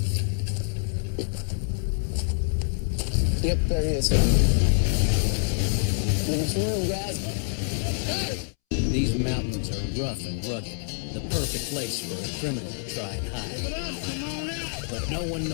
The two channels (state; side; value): silent; right; 61 dB below the other